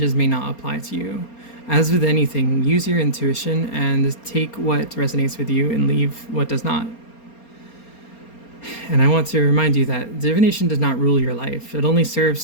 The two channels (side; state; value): right; late; 4.3 ms